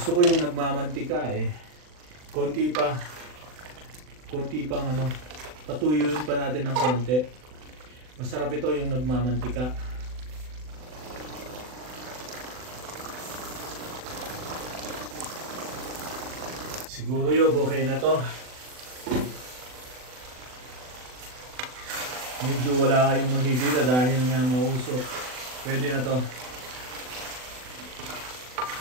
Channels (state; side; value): late; left; 40 ms